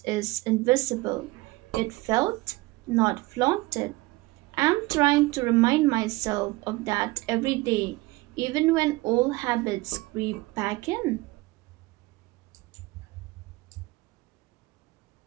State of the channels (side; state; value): left; quieter; 21.8 dB